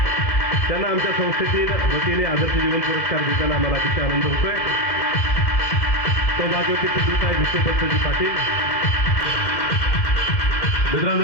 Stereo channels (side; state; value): right; late; 2.0 ms